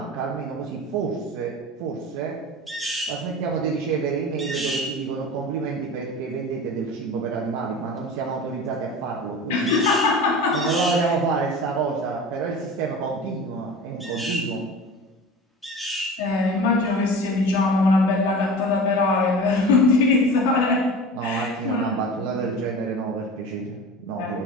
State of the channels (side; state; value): both; normal; correlation 0.34